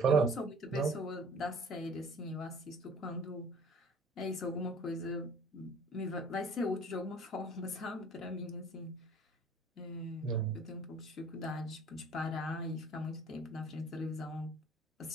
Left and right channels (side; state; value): both; normal; correlation 0.49